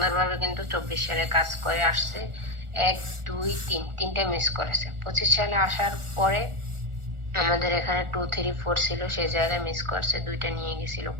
কিন্তু 24 সালে কাজ করে আসছে। 1 2 3 তিনটা মিস করেছে। 25 সালে আসার পরে আমাদের এখানে 2 3 4 ছিল, সেই জায়গায় মিস করছে, 2টা নিয়ে গেছিল।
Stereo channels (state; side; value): late; left; 1.4 ms